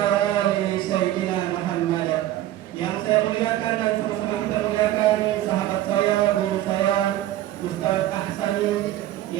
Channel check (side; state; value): left; quieter; 13.9 dB